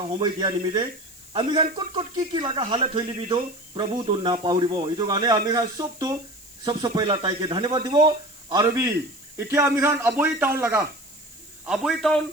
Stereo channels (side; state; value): left; noise; hiss, 21 dB below the sound